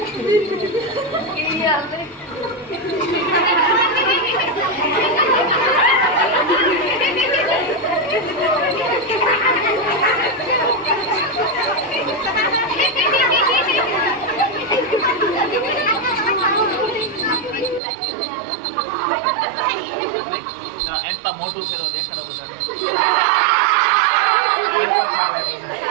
એમ તો મોટું ફેરો દેખાડો બધા.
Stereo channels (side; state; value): left; drops out; at 17.8 s